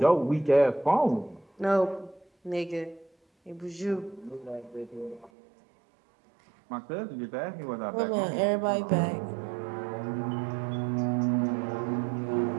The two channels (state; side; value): drops out; left; at 5.3 s